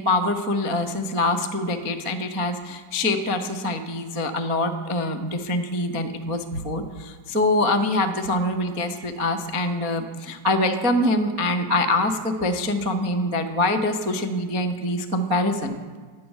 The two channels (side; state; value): left; late; 4.3 ms